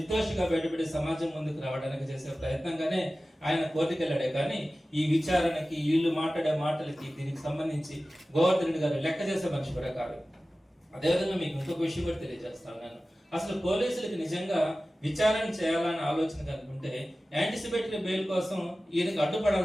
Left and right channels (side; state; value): both; normal; correlation 0.96